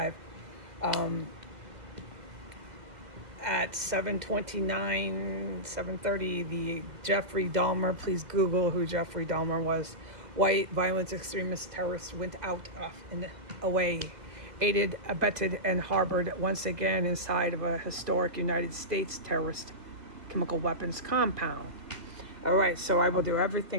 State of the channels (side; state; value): left; late; 2.1 ms